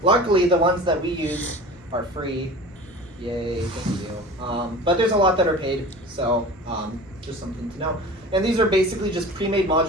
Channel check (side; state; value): both; normal; correlation 0.38